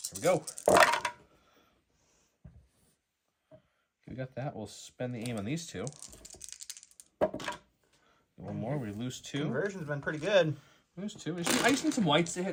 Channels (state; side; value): identical; both; correlation 1.00